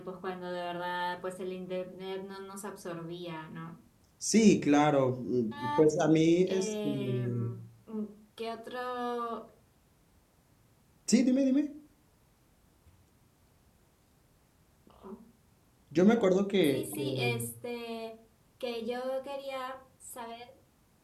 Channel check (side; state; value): both; identical; correlation 1.00